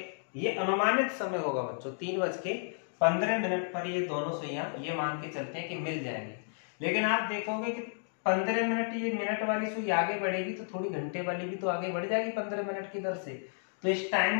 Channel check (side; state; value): right; silent; digital silence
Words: ये अनुमानित समय होगा बच्चों, 3:15 15 मिनट पर ये दोनों सुइयां ये मान के चलते हैं कि मिल जाएंगी। लेकिन आप देखोगे कि 15 मिनट ये मिनट वाली सुई आगे बढ़ेगी तो थोड़ी घंटे वाली भी तो आगे बढ़ जाएगी 15 मिनट की दर से। तो इस